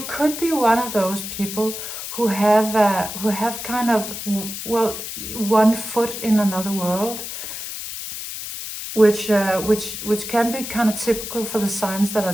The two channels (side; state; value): left; noise; hiss, 8 dB below the sound